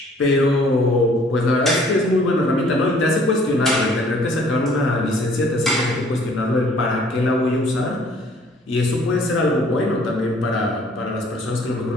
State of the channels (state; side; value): normal; both; correlation 0.57